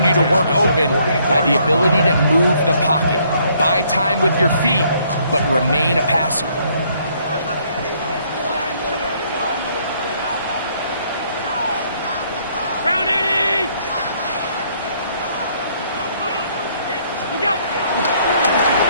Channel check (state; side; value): inverted; both; correlation -0.67